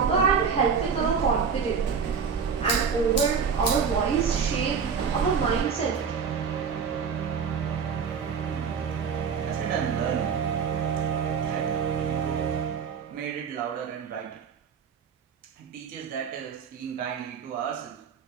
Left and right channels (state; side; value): quieter; left; 6.3 dB